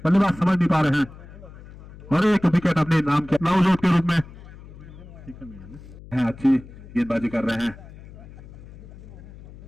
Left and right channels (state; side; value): noise; left; hum, 18 dB below the sound